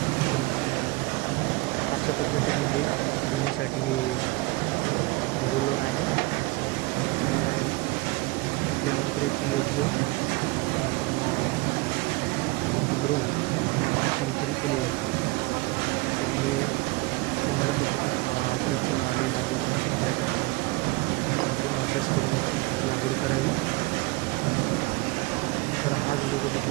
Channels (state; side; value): quieter; left; 22.7 dB